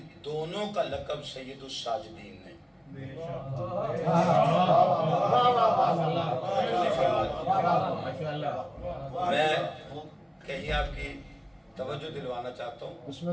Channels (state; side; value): identical; both; correlation 1.00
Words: دونوں کا لقب سید الساجدین نے میں کہیں آپ کی توجہ دلوانا چاہتا ہوں، بسم